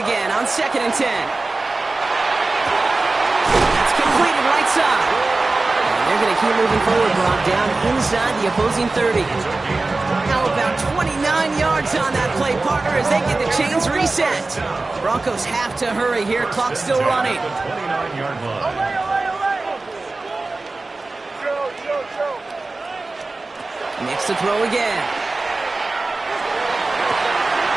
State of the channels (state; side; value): quieter; left; 3.4 dB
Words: on 2nd and 10. That's completed right side. They're going to keep moving forward, Brock, down inside the opposing 30. Now about 29 yards on that play, partner, as they get the chains reset. Broncos have to hurry here. Clock still running. Nix to throw again.